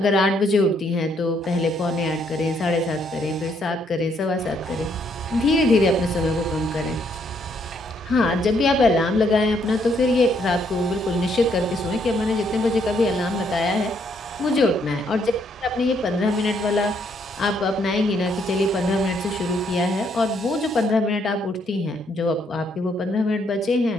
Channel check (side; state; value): both; normal; correlation 0.71